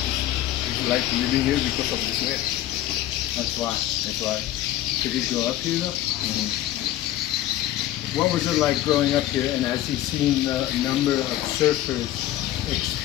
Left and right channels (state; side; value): quieter; right; 13.7 dB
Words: Would you like living here because of this way? That's why. That's why. Did he grow up here though? Mm-hmm. What was it like growing up here, and has he seen the number of surfers